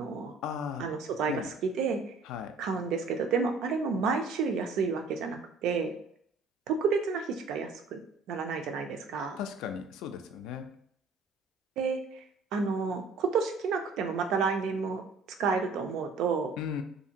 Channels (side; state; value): left; quieter; 4.0 dB